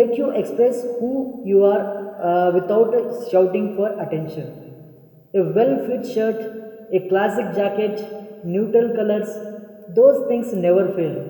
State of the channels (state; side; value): identical; both; correlation 1.00